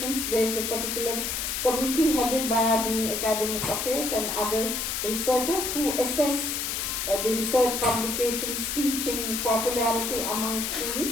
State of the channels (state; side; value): noise; left; hiss, 2 dB below the sound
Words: There is a particular committee headed by our Dean Academic Affairs and other researchers who assess the research publications, teaching, popularity among